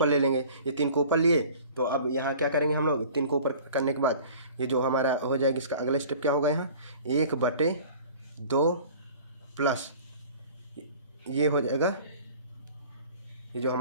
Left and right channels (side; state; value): both; inverted; correlation -0.45